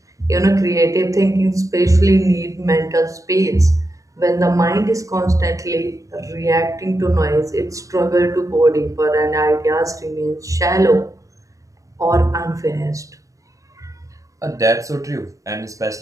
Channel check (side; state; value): left; late; 0.16 ms